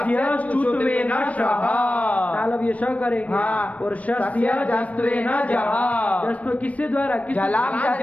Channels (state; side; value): late; right; 0.067 ms